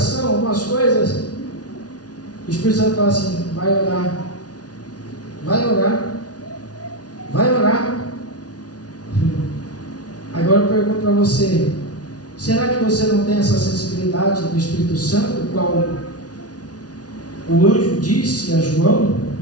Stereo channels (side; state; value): right; late; 0.69 ms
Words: algumas coisas. O Espírito Santo fala assim: vai orar, vai orar, vai orar. Agora eu pergunto para você: será que você não tem essa sensibilidade do Espírito Santo, qual o anjo disse a João?